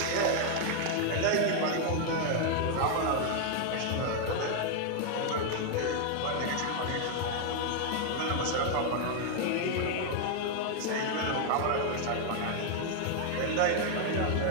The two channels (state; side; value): different; both; correlation 0.00